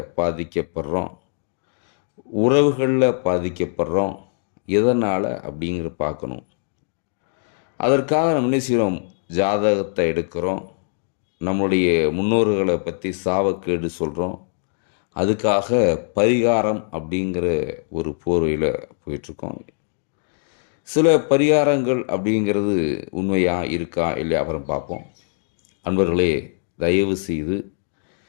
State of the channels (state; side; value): silent; right; digital silence